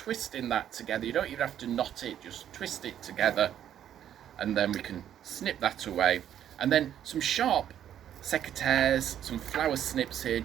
that together. You don't even have to knot it, just twist it together, and then we can snip that away. And then some sharp secateurs, some flower snips here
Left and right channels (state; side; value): quieter; left; 10.3 dB